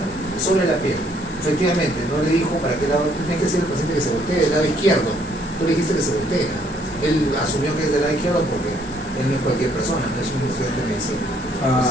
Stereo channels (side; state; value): both; normal; correlation 0.66